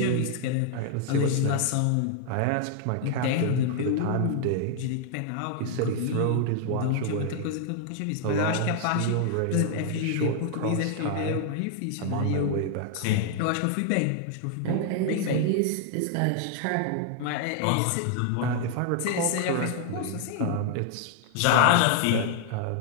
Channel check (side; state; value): both; different; correlation 0.00